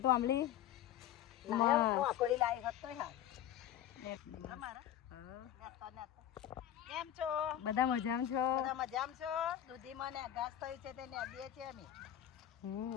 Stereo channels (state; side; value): quieter; right; 11.5 dB